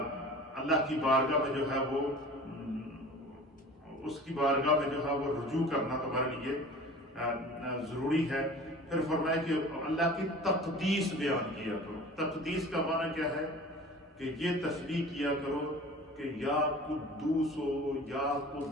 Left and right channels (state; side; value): normal; both; correlation 0.41